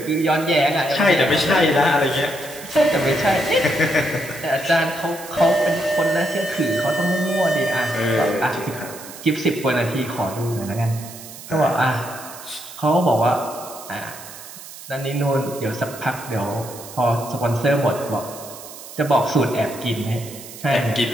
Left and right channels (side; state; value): right; noise; hiss, 15 dB below the sound